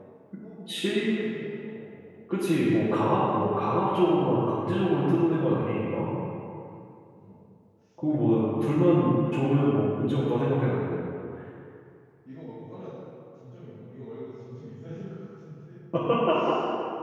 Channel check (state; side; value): identical; both; correlation 1.00